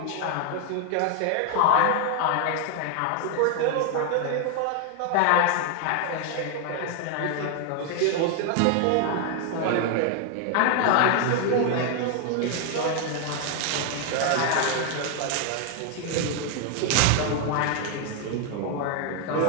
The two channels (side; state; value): both; different; correlation 0.00